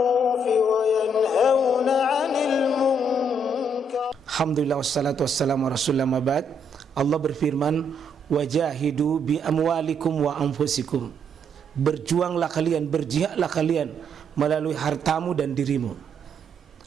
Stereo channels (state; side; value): normal; both; correlation 0.72